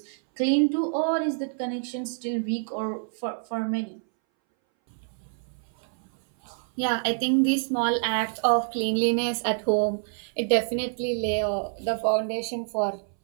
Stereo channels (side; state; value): left; silent; 60 dB below the other